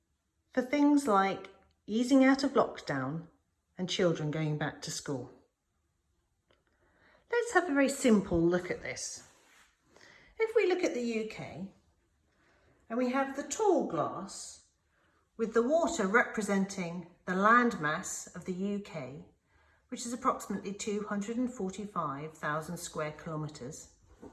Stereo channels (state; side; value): identical; both; correlation 1.00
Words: for things like easing out of lockdown and children going back to school? Let's have a very simple look at this. If we look at the UK and we have the tall glass with the water representing the landmass of the UK, which is approximately 245,000 square kilometres,